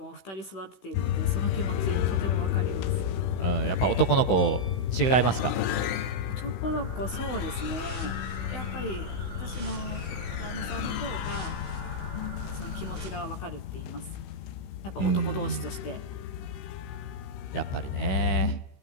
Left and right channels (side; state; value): right; late; 16 ms